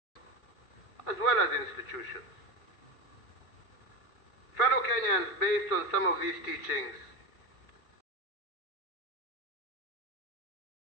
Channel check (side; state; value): right; late; 2.3 ms